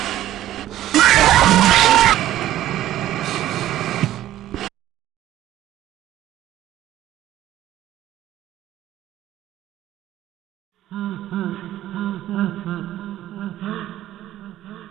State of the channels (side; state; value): left; quieter; 13.5 dB